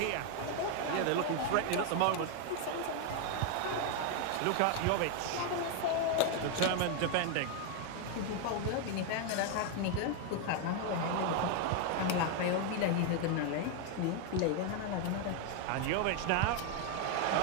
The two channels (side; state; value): both; different; correlation 0.01